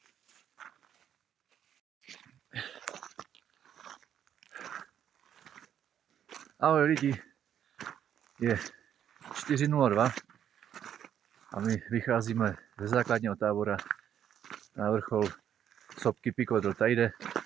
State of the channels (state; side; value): quieter; left; 9.6 dB